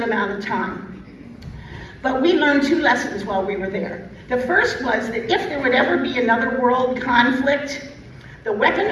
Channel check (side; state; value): both; identical; correlation 1.00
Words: amount of time. But we learned two lessons while we were there. The first was that if there would ever be another world conflict, the weapon